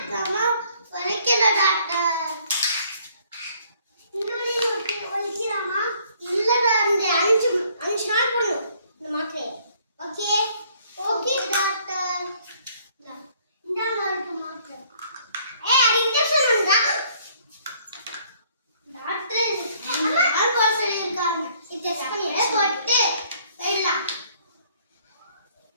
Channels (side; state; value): both; inverted; correlation -0.62